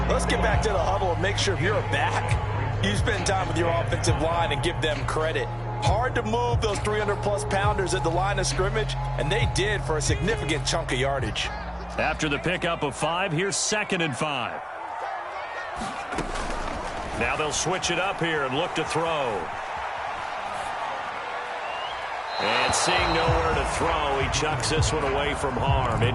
Let's get back to the huddle and make sure if you're a back, you spend time with your offensive line and give them credit. Hard to move those 300-plus pounders at the line of scrimmage, and they did for a significant chunk of yardage. After the pickup of 5, here's 2nd and 5. Now they'll switch it up here and look to throw. And seeing nowhere to throw, he chucks this one away from harm.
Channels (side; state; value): both; identical; correlation 1.00